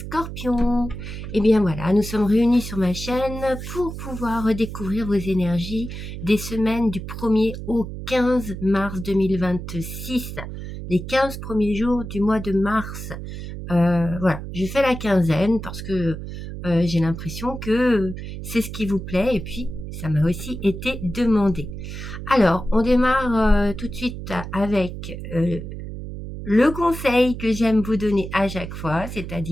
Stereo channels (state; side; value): noise; right; hum, 8 dB below the sound